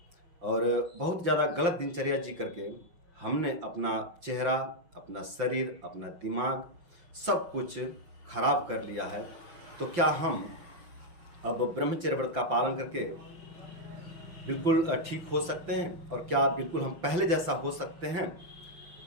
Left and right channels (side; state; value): left; late; 5.9 ms